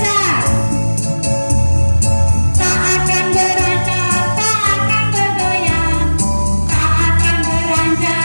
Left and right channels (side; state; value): both; inverted; correlation -1.00